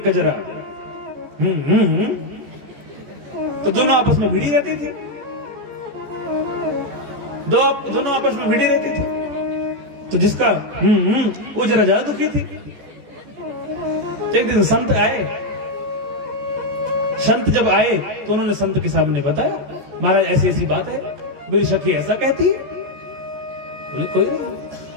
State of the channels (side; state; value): left; late; 15 ms